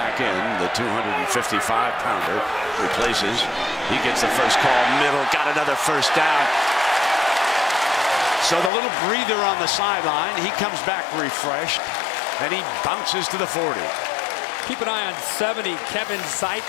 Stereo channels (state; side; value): drops out; right; at 8.7 s